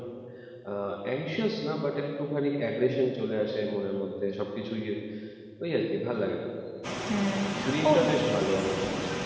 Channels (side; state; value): both; identical; correlation 1.00